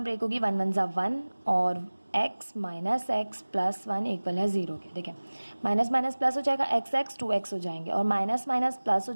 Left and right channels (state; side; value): inverted; both; correlation -1.00